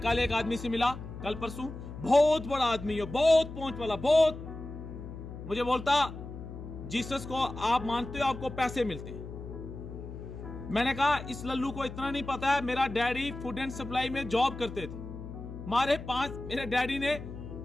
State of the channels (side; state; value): left; noise; hum, 11 dB below the sound